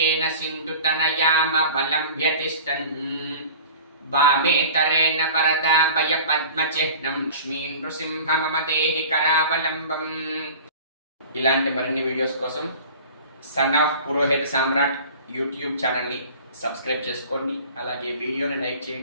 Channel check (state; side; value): inverted; both; correlation -0.41